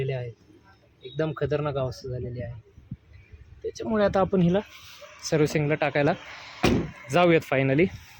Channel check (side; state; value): both; identical; correlation 1.00